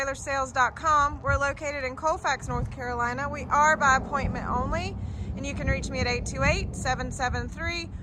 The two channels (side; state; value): both; identical; correlation 1.00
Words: We're located in Colfax, North Carolina. We are by appointment only, and you can reach me at